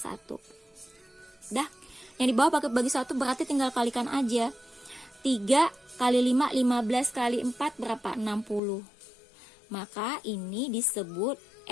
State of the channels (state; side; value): drops out; right; at 8.6 s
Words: 1. Dah. Yang di bawah bagi 1 berarti tinggal kalikan aja. 3 kali 5, 15 kali 4 berapa? 60. Maka ini disebut